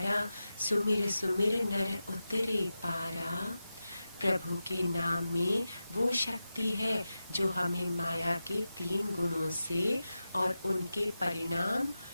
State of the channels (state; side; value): inverted; both; correlation -0.93